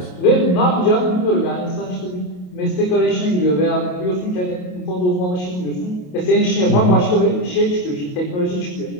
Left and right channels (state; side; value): late; right; 28 ms